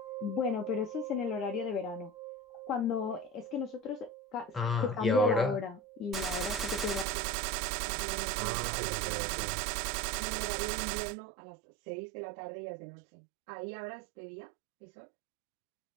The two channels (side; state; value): left; drops out; at 7.1 s